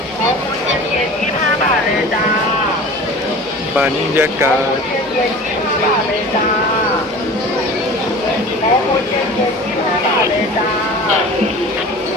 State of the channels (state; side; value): normal; both; correlation 0.39